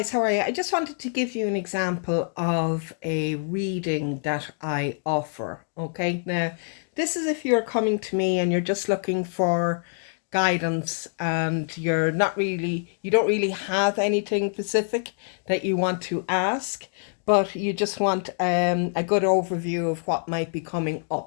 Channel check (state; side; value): silent; right; 61 dB below the other